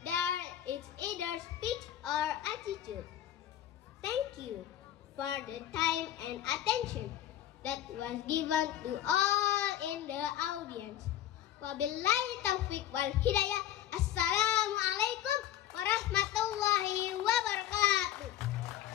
there is either speech or attitude. Thank you for the time and attention that was given to all in the audience. Wabillahi taufiq wal hidayah. Assalamualaikum warahmatullahi wabarakatuh.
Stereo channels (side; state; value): right; quieter; 11.9 dB